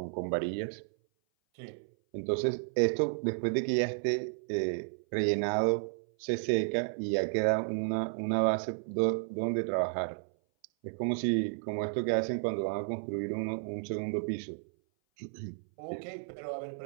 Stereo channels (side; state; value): left; silent; 56 dB below the other